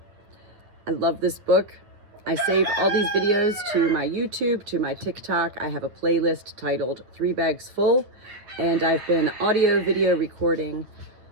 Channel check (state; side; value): late; left; 9.5 ms